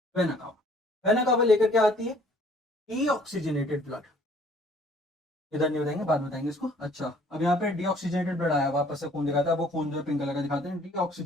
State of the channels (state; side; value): normal; both; correlation 0.57